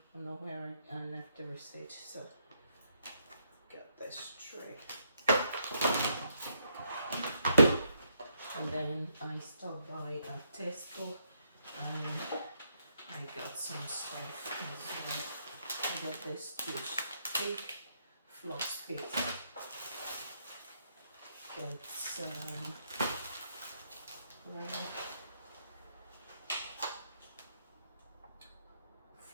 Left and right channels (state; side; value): inverted; both; correlation -0.76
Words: don't know where I left the receipt, so got this tray. And then I stopped by at Tesco, and I got some stuff as well. I got this toothpick, floss pick. Got some